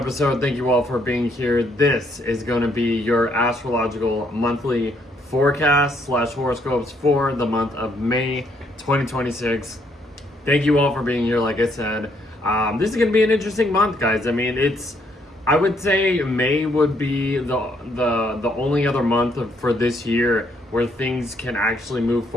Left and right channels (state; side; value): normal; both; correlation 0.71